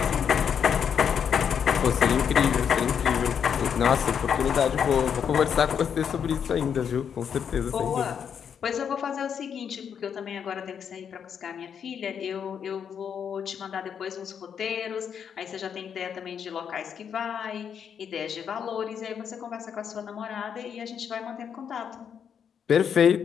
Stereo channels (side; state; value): right; quieter; 7.7 dB